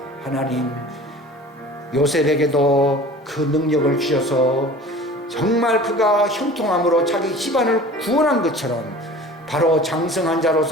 하나님 요셉에게도 그 능력을 주셔서 정말 그가 형통함으로 자기 집안을 구원한 것처럼 바로 장성한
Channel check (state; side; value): normal; both; correlation 0.42